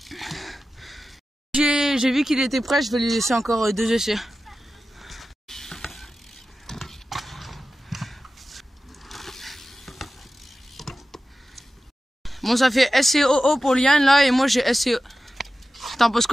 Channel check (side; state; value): both; normal; correlation 0.94